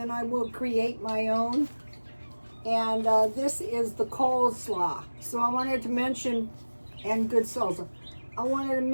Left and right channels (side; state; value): both; inverted; correlation -1.00